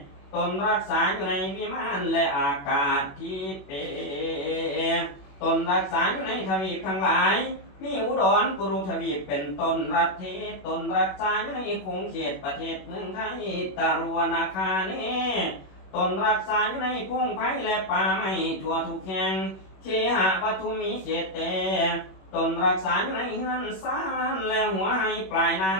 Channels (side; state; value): right; late; 21 ms